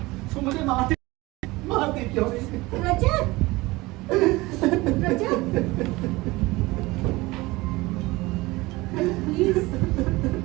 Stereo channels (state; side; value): quieter; left; 21.2 dB